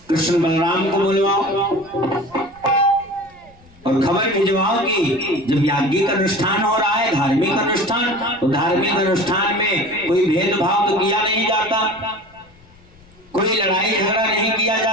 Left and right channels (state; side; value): noise; left; rumble, 28 dB below the sound